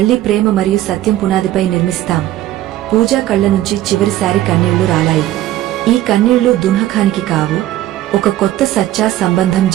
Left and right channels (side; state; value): left; quieter; 14.2 dB